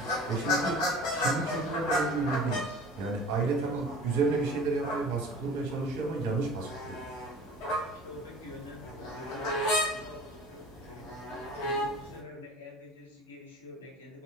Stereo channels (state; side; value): normal; both; correlation 0.42